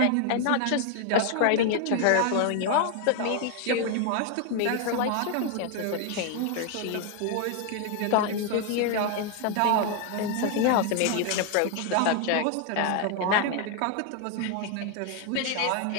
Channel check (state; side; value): different; both; correlation 0.01